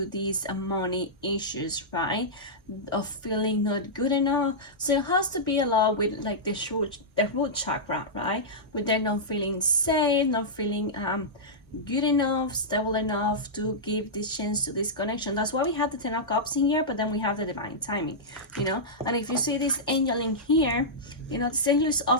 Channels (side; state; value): both; normal; correlation -0.11